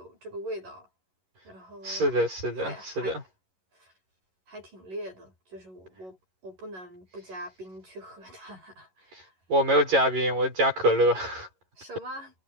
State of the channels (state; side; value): late; left; 11 ms